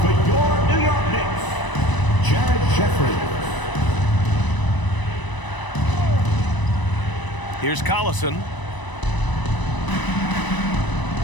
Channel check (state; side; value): late; right; 1.0 ms